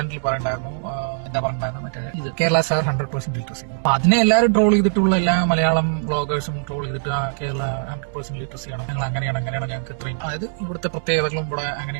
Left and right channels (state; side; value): silent; left; 64 dB below the other